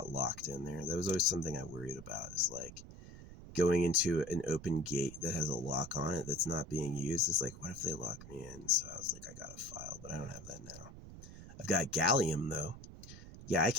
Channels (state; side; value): noise; right; rumble, 15 dB below the sound